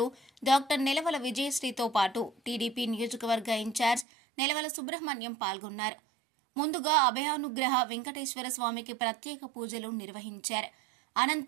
డాక్టర్ నెలవల విజయశ్రీతో పాటు టీడీపీ నియోజకవర్గ ఇన్ఛార్జ్ నెలవల సుబ్రహ్మణ్యం పాల్గొన్నారు. ముందుగా అభయానుగ్రహ వెంకటేశ్వర స్వామికి ప్రత్యేక పూజలు నిర్వహించారు.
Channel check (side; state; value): left; drops out; at 4.0 s